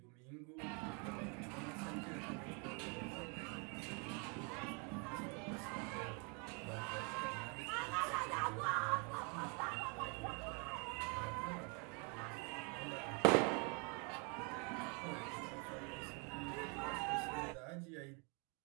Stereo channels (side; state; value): left; quieter; 34.3 dB